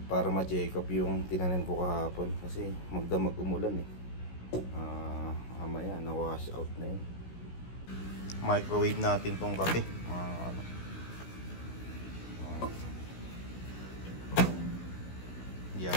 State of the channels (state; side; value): late; right; 16 ms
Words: para ma-check up yung tinanim ko kahapon. Kasi magdamag umulan eh. Mamaya na wash out na yun. Microwave natin tong kape mga kano.